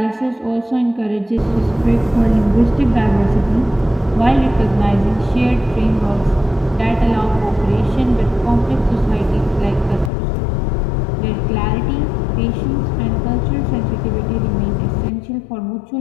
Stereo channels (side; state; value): right; drops out; at 10.1 s